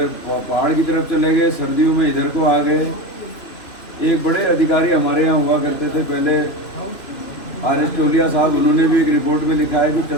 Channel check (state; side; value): late; right; 3.0 ms